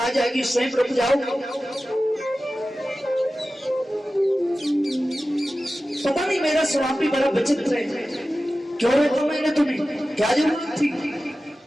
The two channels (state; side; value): normal; both; correlation 0.95